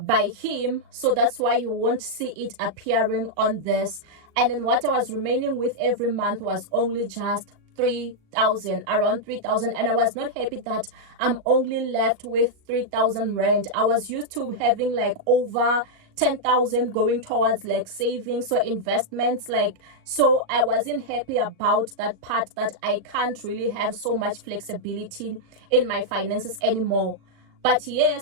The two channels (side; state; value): left; late; 38 ms